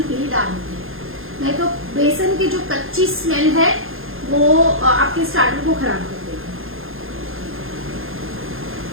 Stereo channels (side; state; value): left; late; 0.60 ms